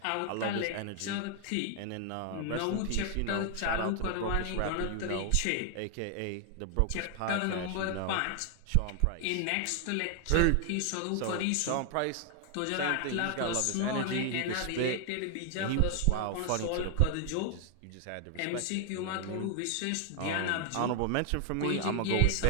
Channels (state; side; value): different; both; correlation 0.00